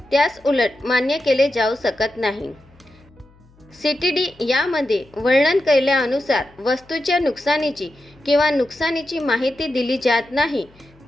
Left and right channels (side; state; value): left; noise; hum, 29 dB below the sound